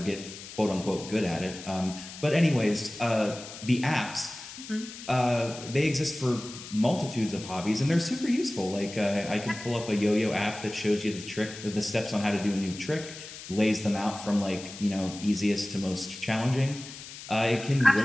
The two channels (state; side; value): noise; left; hiss, 13 dB below the sound